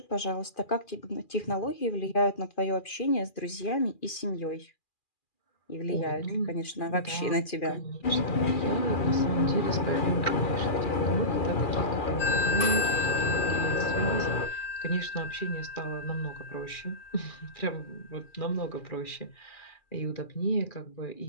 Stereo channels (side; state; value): right; late; 2.4 ms